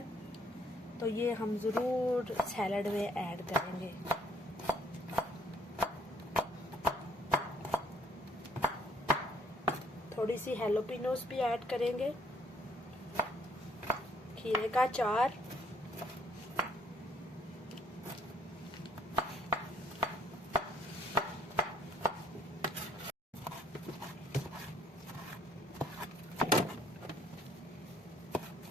तो ये हम ज़रूर सैलड में ऐड करेंगे। थोड़ी सी हैलोपिनोस भी ऐड करेंगे। खीरे का अचार,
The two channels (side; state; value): both; normal; correlation 0.65